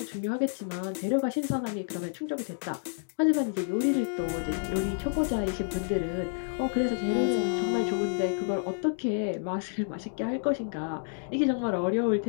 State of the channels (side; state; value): right; silent; digital silence